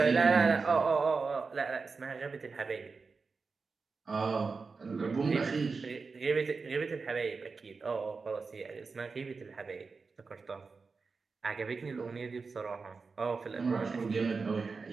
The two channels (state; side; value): quieter; left; 4.6 dB